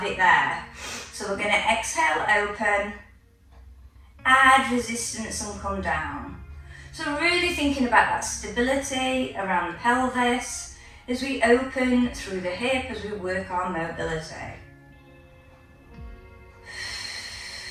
it there. So we're going to exhale, open, add resistance and come down. So really thinking about that stability around the pelvis as we open through the hip as we work our mobility.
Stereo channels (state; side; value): identical; both; correlation 1.00